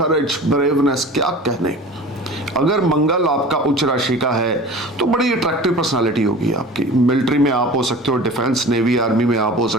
ब्रेवनेस, क्या कहने। अगर मंगल आपका उच्च राशि का है तो बड़ी अट्रैक्टिव पर्सनालिटी होगी आपकी। मिलिट्री में आप हो सकते हो, डिफेंस, नेवी, आर्मी में आप हो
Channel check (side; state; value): both; normal; correlation 0.39